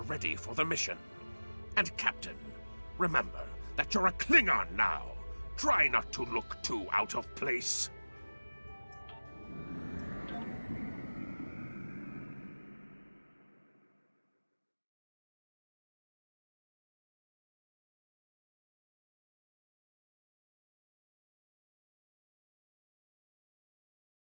ready for the mission. And Captain, remember that you're a Klingon now. Try not to look too out of place.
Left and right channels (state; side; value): inverted; both; correlation -1.00